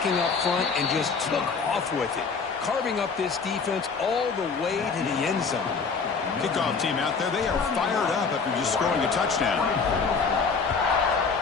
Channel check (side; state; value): right; quieter; 5.1 dB